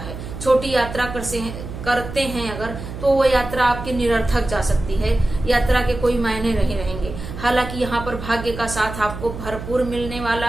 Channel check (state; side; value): noise; right; hum, 9 dB below the sound